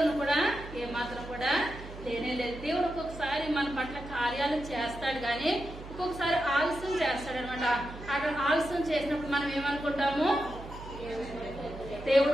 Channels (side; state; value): right; noise; hum, 13 dB below the sound